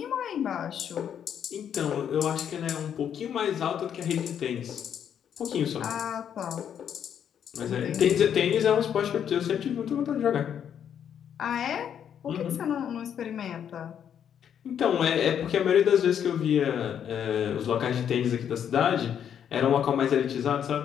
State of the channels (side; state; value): right; quieter; 8.8 dB